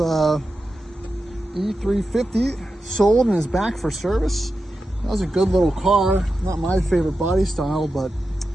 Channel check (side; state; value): both; normal; correlation 0.91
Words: E350 sold and is back for service. That was a good little car. Not my favorite body style, but